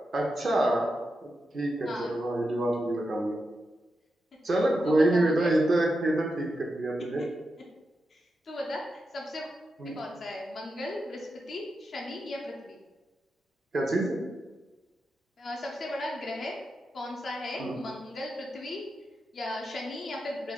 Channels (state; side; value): normal; both; correlation 0.88